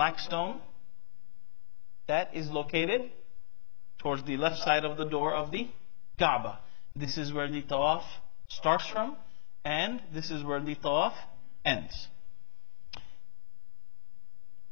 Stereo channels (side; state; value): right; silent; 55 dB below the other